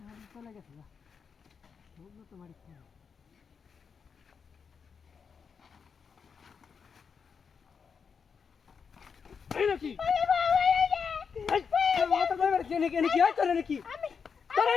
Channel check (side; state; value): right; quieter; 6.1 dB